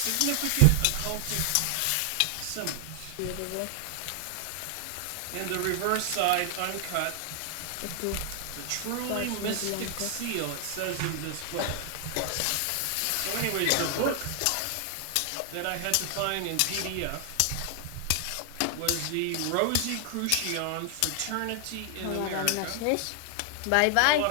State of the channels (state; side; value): different; both; correlation 0.00